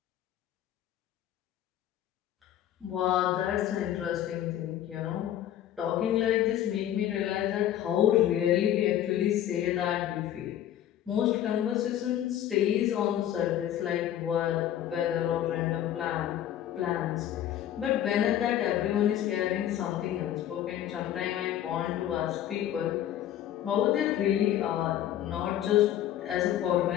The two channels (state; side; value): quieter; right; 11.5 dB